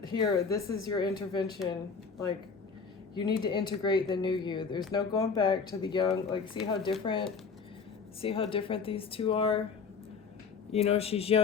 here, this is your intervention. Like, you need to integrate the new you. There's no going back to the young. Like, see how different these two are? You know, she's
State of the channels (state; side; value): quieter; right; 5.4 dB